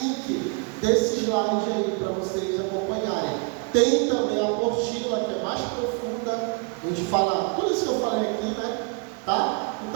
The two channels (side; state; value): left; quieter; 33.2 dB